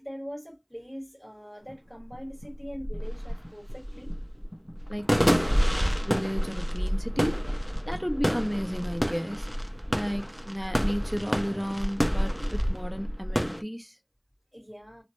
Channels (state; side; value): identical; both; correlation 1.00